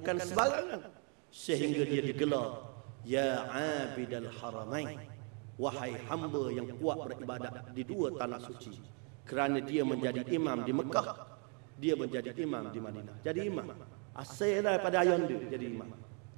sembarangan, sehingga dia digelar ya abidal haramain, wahai hamba yang kuat beribadat di dua tanah suci. Kerana dia menjadi imam di Mekah, dia menjadi imam di Madinah. Jadi imam asal daripada ayah dia jadi imam.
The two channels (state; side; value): quieter; left; 37.6 dB